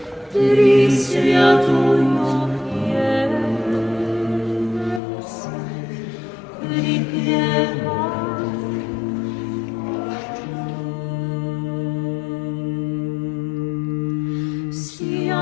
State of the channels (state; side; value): drops out; right; at 5.0 s